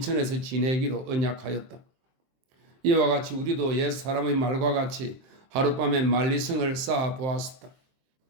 지내기로 언약하였다. 이와 같이 우리도 옛 사람의 말과 같이 하룻밤에 만리성을 쌓아 보았었다.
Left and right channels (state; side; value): late; left; 23 ms